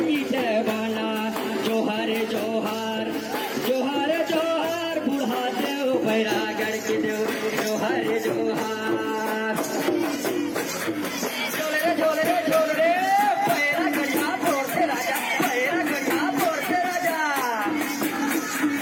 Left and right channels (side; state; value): both; identical; correlation 1.00